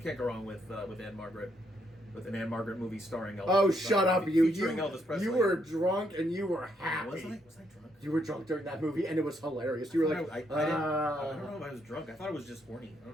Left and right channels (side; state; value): both; normal; correlation 0.75